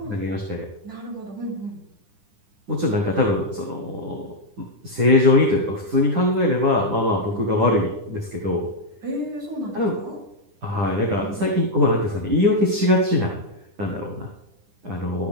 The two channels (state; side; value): late; left; 9.9 ms